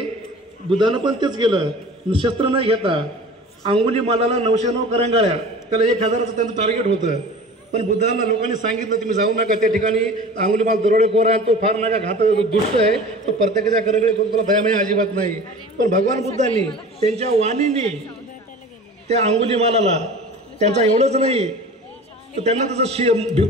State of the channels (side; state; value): both; normal; correlation 0.39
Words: बुद्धानं पण तेच केलं. शस्त्र न घेता अंगुलीमालाला 909 करंगाळ्या, त्याला 1000चं त्यांचं टार्गेट होतं. पण बुद्धांना लोकांनी सांगितलं तुम्ही जाऊ नका त्या ठिकाणी, अंगुलीमाल दरोडेखोर आहे, तो फार नका घात दुष्ट आहे, तो प्रत्येकाच्या करंगळे करून तुला दयामय अजिबात नाही. पण भगवान बुद्धांनी त्यांच्या वाणीने त्या अंगुलीमालाला त्यांचा एवढंच नाही तर त्यांना त्याचं